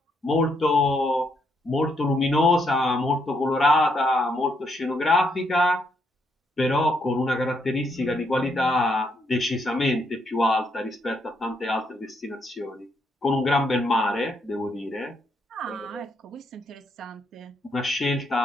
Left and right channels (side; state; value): both; normal; correlation 0.76